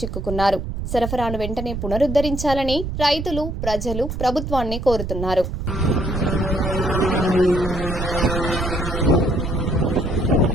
సరఫరాను వెంటనే పునరుద్ధరించాలని రైతులు, ప్రజలు ప్రభుత్వాన్ని కోరుతున్నారు.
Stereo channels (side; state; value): right; noise; rumble, 5 dB below the sound